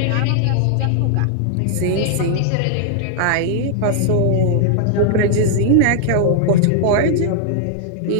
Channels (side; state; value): both; different; correlation 0.00